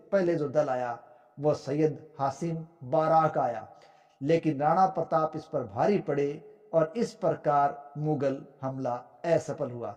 पहले जो दल आया वो सैयद हासिम बाराक का आया, लेकिन राणा प्रताप इस पर भारी पड़े और इस प्रकार मुगल हमला असफल हुआ।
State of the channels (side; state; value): both; identical; correlation 1.00